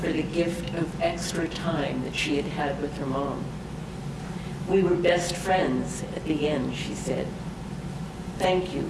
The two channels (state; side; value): identical; both; correlation 1.00